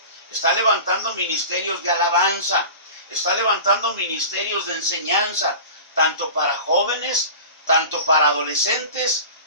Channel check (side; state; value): both; inverted; correlation -0.36